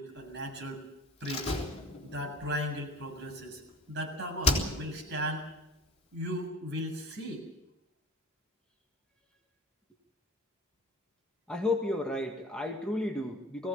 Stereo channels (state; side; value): normal; both; correlation 0.44